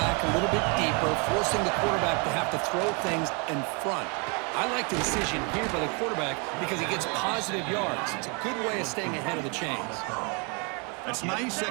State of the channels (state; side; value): quieter; left; 33.5 dB